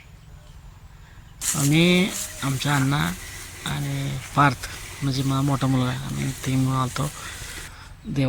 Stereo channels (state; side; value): identical; both; correlation 1.00